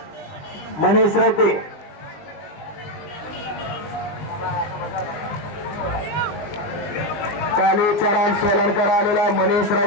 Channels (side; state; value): right; late; 20 ms